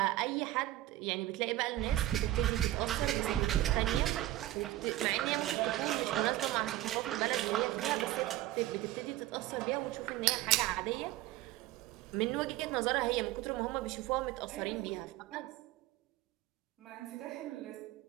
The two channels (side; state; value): left; quieter; 15.6 dB